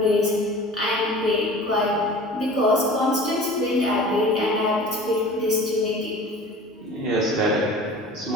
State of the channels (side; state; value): both; normal; correlation 0.42